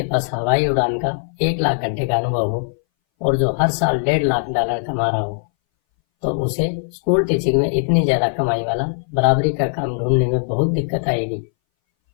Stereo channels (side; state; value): right; silent; 62 dB below the other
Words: पास हवाई उड़ान का 1 लाख घंटे का अनुभव हो और जो हर साल $1.5 लाख कमा रहा हो, तो उसे स्कूल टीचिंग में इतनी ज्यादा कमाई वाला बराबरी का काम ढूंढने में बहुत दिक्कत आएगी।